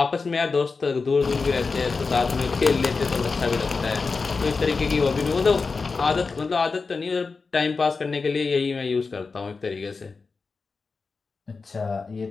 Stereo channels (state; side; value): quieter; right; 4.4 dB